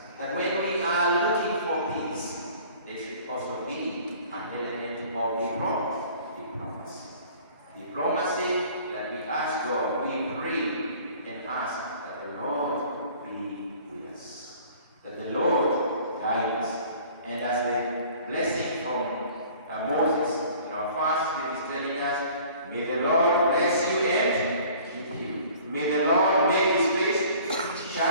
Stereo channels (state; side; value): inverted; both; correlation -0.50